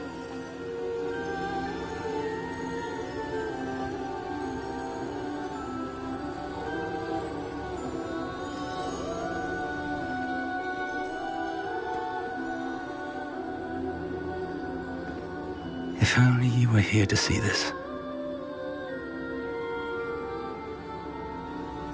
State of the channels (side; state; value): both; identical; correlation 1.00